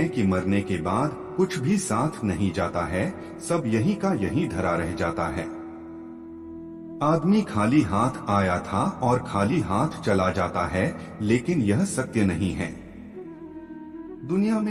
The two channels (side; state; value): both; identical; correlation 1.00